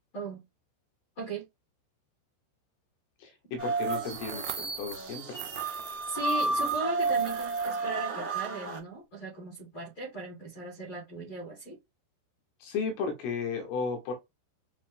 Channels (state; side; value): late; right; 14 ms